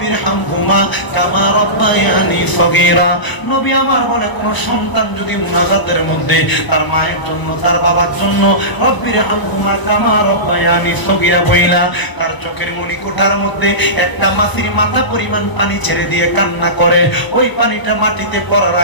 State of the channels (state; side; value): late; right; 1.0 ms